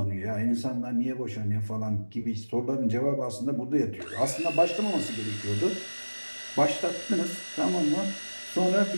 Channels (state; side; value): inverted; both; correlation -1.00